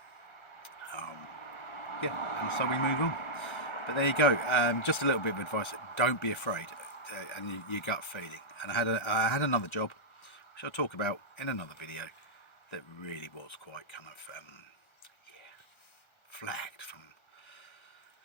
that. Yeah, and so we move on. But there you go. Just a little bit of advice: don't be afraid, and your gut feeling. And I had another job, which I'll talk about in another video, that really was quite kind of flagged from.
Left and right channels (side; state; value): right; late; 1.3 ms